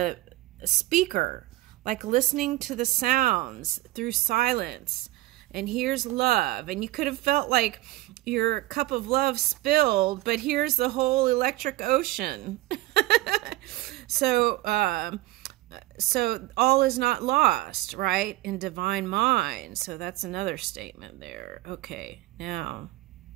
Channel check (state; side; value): quieter; left; 18.3 dB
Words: speaker, like listening to the sounds through silence. And here's love. And you could have felt like your cup of love spilled, but here's the whole electric ocean. So all is not lost, right? In divine mind. So that's another statement there. Okay, now